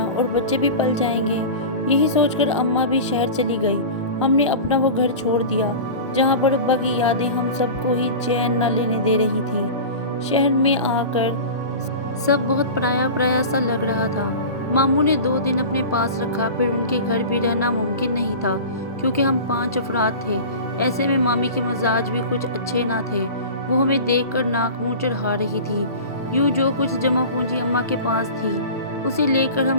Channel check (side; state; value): both; inverted; correlation -0.33